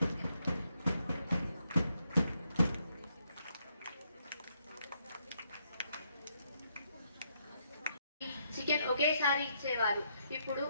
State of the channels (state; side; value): inverted; both; correlation -0.76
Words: chicken ఒకేసారి ఇచ్చేవారు, ఇప్పుడు